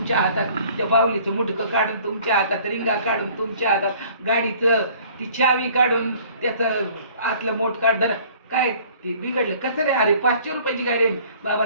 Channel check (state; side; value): inverted; both; correlation -0.53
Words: हातात, त्या बाहुलीचं मुडकं काढून तुमच्या हातात, रिंगा काढून तुमच्या हातात, गाडीचं ती चावी काढून त्याचं आतलं मोठ काढ. काय ते बिघडलं कसं रे? अरे 500 रुपयाची गाडी आहे बाबा,